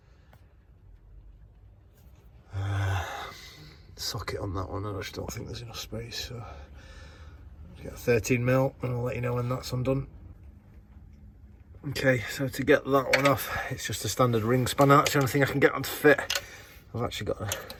socket on that one. I just don't think there's enough space, so I'll get a 13 mil and I'll let you know when that's undone. Okay, so to get that one off, it's just a standard ring spanner. That's the only thing I can get on to fit. I've actually got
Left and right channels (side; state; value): both; identical; correlation 1.00